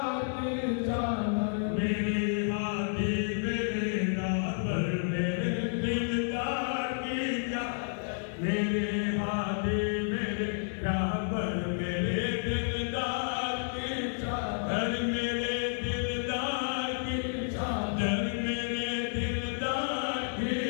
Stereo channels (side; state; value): right; silent; digital silence